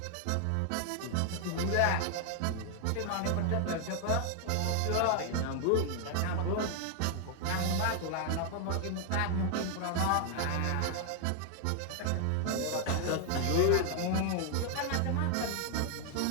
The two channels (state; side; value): different; both; correlation 0.00